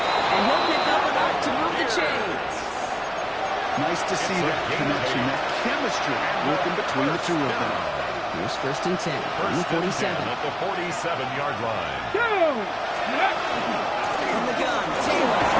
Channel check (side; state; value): both; identical; correlation 1.00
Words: And he'll pick up enough to move the chains. Nice to see that connection, that chemistry working between the two of them. Here's 1st and 10 from the 47. At the 47-yard line. From the gun, Taylor.